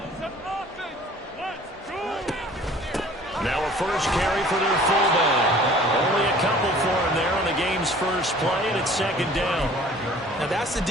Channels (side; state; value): both; normal; correlation 0.50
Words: Now a first carry for their fullback. Only a couple for him there on the game's first play, and it's 2nd down. Now that's the